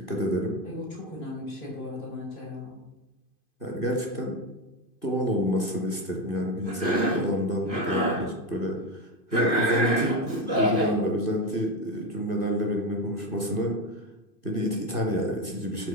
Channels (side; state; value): right; late; 2.5 ms